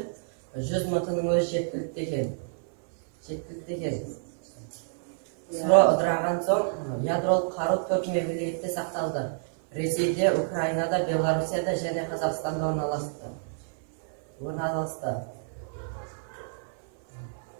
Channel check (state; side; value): silent; left; 59 dB below the other